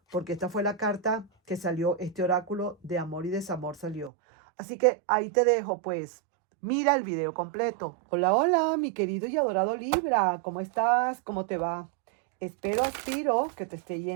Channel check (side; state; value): left; drops out; at 4.1 s